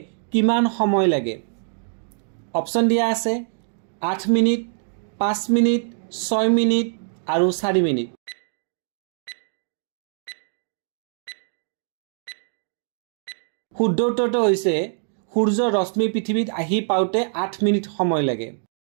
কিমান সময় লাগে? অপশ্যন দিয়া আছে 8 মিনিট, 5 মিনিট, 6 মিনিট আৰু 4 মিনিট। শুদ্ধ উত্তৰটো হৈছে সূৰ্যৰ ৰশ্মি পৃথিৱীত আহি পাওঁতে 8 মিনিট সময় লাগে।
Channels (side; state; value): left; silent; digital silence